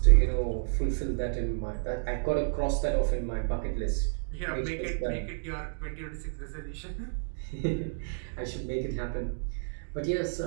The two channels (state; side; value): silent; left; digital silence